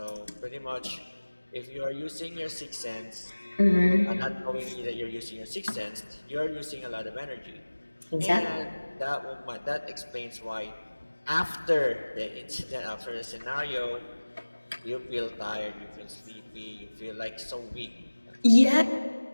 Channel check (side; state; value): both; inverted; correlation -1.00